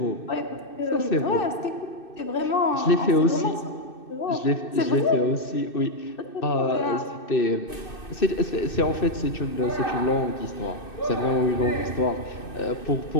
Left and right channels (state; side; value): late; right; 2.6 ms